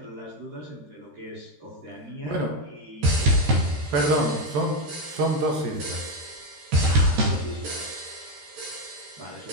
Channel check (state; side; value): late; left; 13 ms